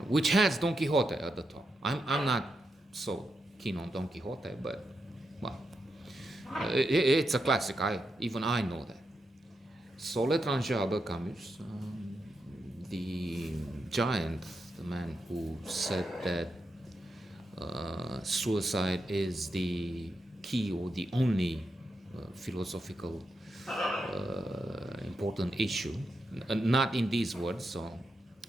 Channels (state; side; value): normal; both; correlation 0.85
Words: which has Don Quixote at the top. I'm not so keen on Don Quixote, but well, it's a classic. Even I know that. So L'étranger, Albert Camus, the giant, the man who said that suicide is the key or the only philosophical important issue. Not in these words, so